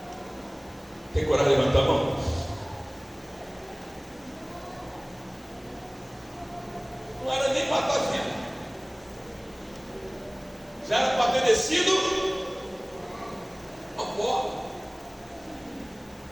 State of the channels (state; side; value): noise; left; hiss, 27 dB below the sound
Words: Tem coragem de levantar a mão? Não era nem para estar vivo, já era para ter descido